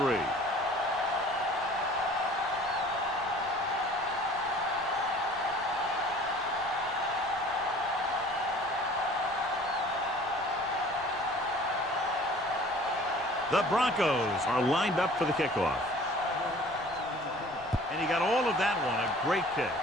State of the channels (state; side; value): noise; left; rumble, 23 dB below the sound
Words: The Broncos are lined up for the kickoff. And he got all of that one. A great kick.